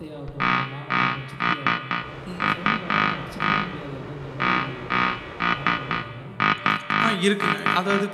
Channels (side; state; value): both; identical; correlation 1.00